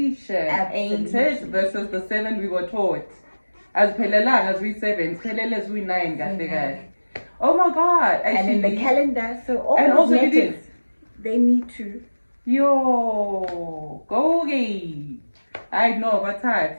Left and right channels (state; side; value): inverted; both; correlation -1.00